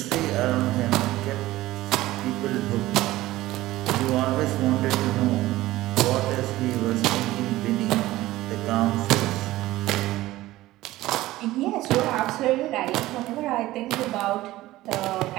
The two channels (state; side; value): quieter; left; 16.8 dB